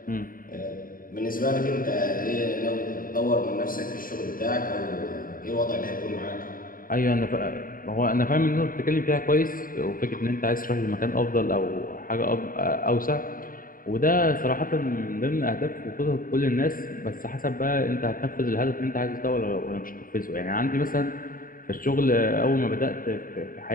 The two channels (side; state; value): right; late; 0.41 ms